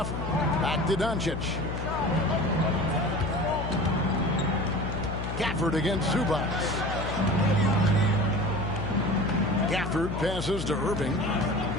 Back to Doncic. Gafford against Zubac. Gafford passes to Irving.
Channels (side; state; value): left; noise; hum, 5 dB below the sound